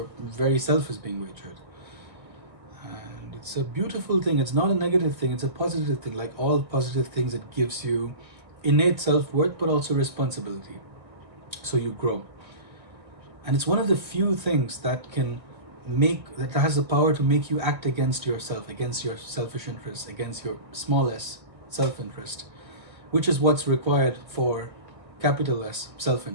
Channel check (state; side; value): late; left; 1.7 ms